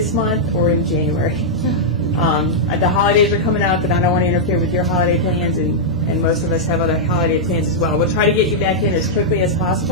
month or in January. The holidays are coming up, and I don't want to interfere with your holiday plans, and most of us have other holiday plans as well. We'll try to get you back in as quickly as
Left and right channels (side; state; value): both; normal; correlation -0.07